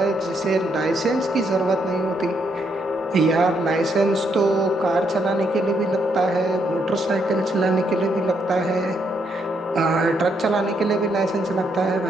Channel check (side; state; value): both; normal; correlation 0.75